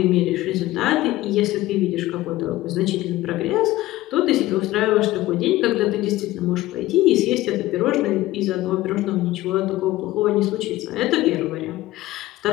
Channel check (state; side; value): quieter; right; 16.8 dB